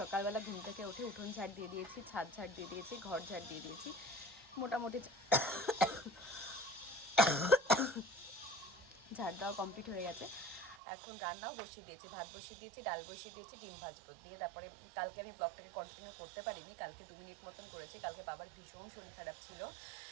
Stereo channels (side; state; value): left; drops out; at 10.8 s